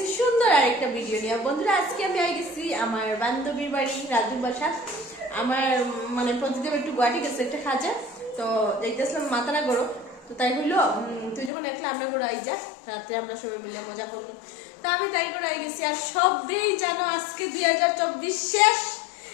সুন্দর আরেকটা ভিডিও নিয়ে। বন্ধুরা আজকে আমি হয়ে গেছি আমার বান্ধবীর বাড়ি রাজু বাসা। আমার মানে প্রতিদিন একটু গুয়াহাটি গেছে একটা কাজে, তো যাইতেছিলাম মাতারা গড়ো। তো তাই হইলো তুই যখন একলা আমরা গড়ো আই যা, রাত্রে আমরা সবাই মিলে মজা করবো। তা আমি তাই করে আই গেছি। আর সবই জানো আজকে 2024 শেষ,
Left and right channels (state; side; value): drops out; right; at 11.5 s